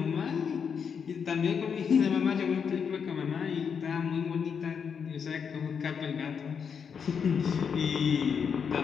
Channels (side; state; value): right; quieter; 6.7 dB